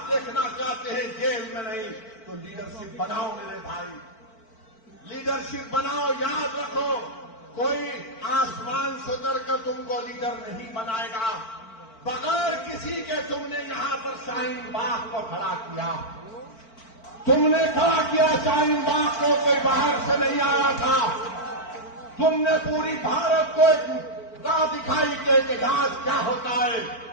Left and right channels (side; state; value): right; late; 4.5 ms